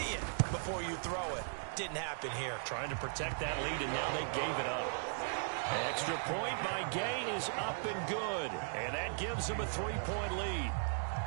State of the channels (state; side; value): silent; left; digital silence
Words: it before you throw it. Didn't happen here. Trying to protect that lead, and now they gave it up. Extra point by Gay is up and good, and that gives them a 3-point lead.